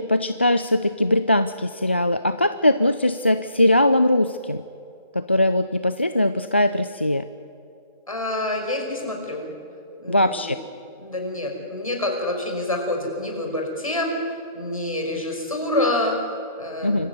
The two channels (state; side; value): inverted; both; correlation -0.66